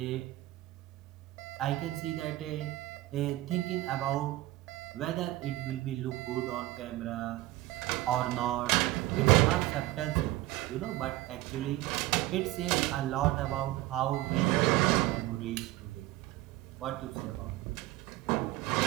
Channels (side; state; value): left; quieter; 17.2 dB